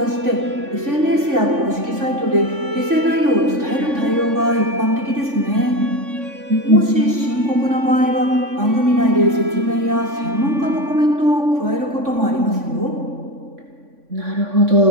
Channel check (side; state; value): left; late; 3.5 ms